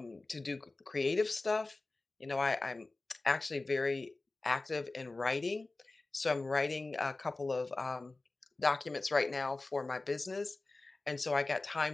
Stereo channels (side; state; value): right; quieter; 3.2 dB